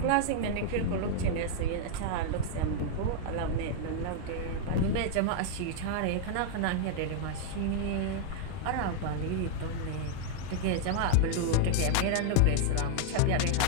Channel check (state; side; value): different; both; correlation 0.00